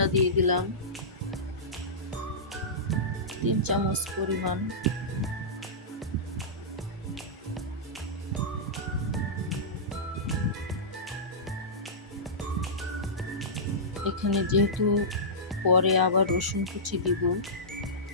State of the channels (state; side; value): normal; both; correlation -0.16